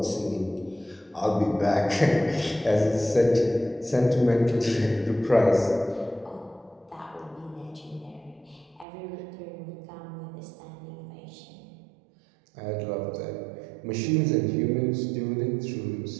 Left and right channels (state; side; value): drops out; left; at 8.8 s